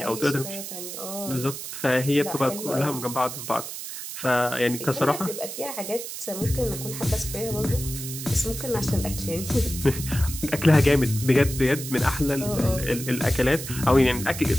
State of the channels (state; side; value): noise; right; hiss, 8 dB below the sound